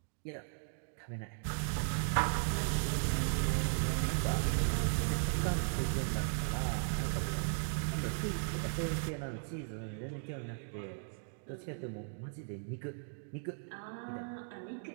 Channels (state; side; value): silent; left; digital silence